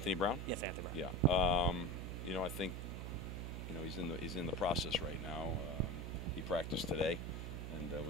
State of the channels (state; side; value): noise; right; hum, 5 dB below the sound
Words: Brown? Yes, Anthony Brown. Yeah. You know, I think, you know, he's in the process right now. He practiced today, and